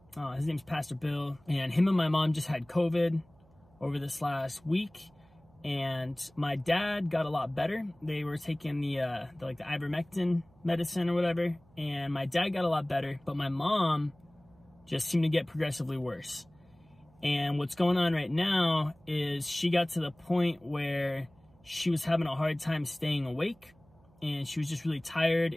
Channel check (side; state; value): right; noise; hum, 30 dB below the sound